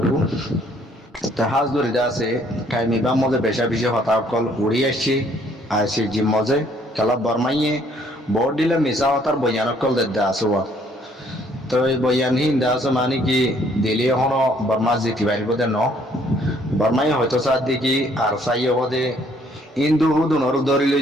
হাজ ধরে আছে কাইমি বা মজে বেশা বেশি হতা কল উড়ি আসছি জিম মজে কালা বরমাইয়ে বড় দিলে মিশা হতার বয়ান কল দে আসুয়া। তো এই বয়ান হিন্দা আছে মানে কি দিলে হনো বর্মা জিতি পারিব দে ন বর্মাই হয়তো সার দেখি আর সাইয়ে হদে ইন্দু হুদুনর ধরিল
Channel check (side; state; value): both; normal; correlation 0.63